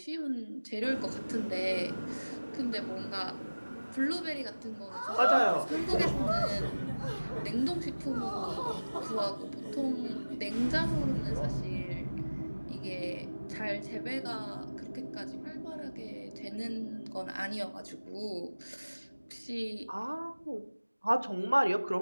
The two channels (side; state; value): both; inverted; correlation -1.00